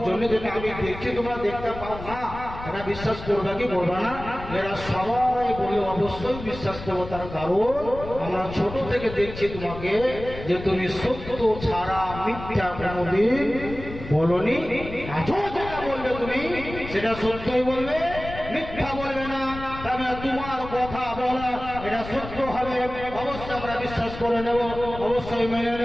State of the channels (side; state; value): left; noise; rumble, 11 dB below the sound